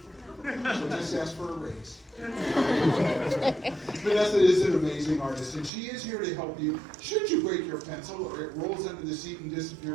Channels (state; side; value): drops out; left; at 5.7 s